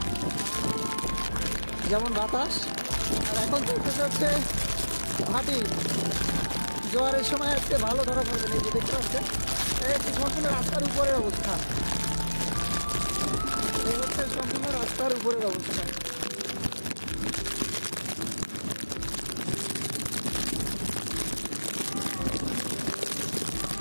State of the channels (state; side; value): inverted; both; correlation -1.00